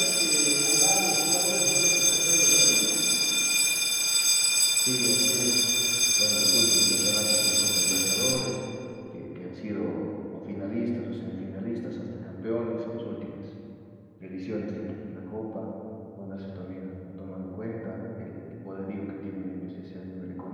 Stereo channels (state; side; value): identical; both; correlation 1.00